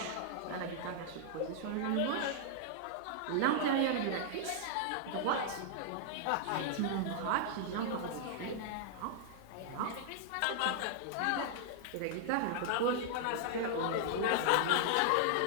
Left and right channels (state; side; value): different; both; correlation -0.01